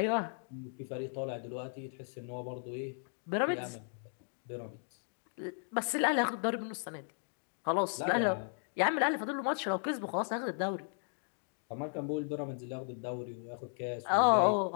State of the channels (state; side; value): silent; right; digital silence